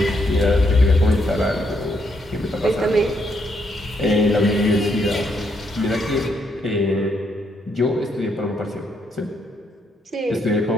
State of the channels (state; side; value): normal; both; correlation 0.76